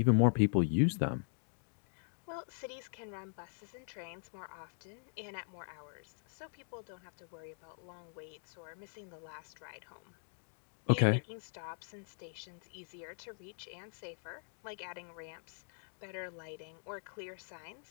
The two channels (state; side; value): silent; right; digital silence